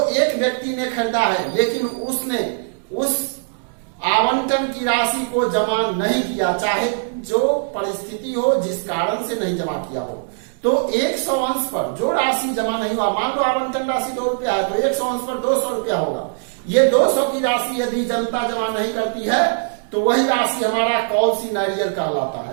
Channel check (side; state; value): left; silent; digital silence